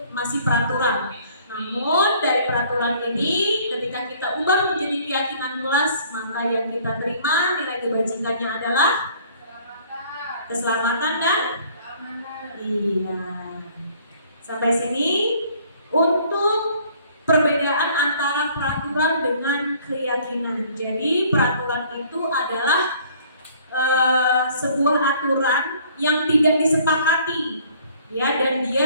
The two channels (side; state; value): both; inverted; correlation -0.57